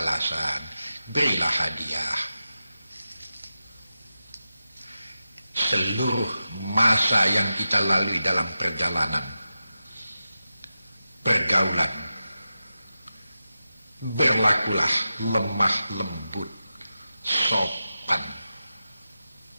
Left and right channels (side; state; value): both; inverted; correlation -0.92